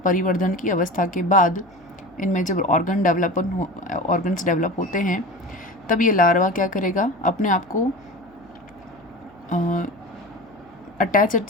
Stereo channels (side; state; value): left; noise; hum, 29 dB below the sound